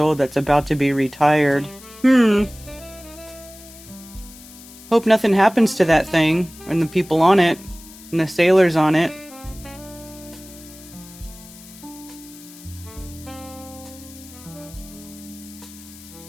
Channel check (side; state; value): left; noise; hiss, 19 dB below the sound